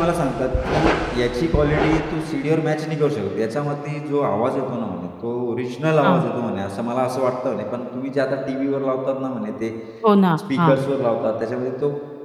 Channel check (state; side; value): identical; both; correlation 1.00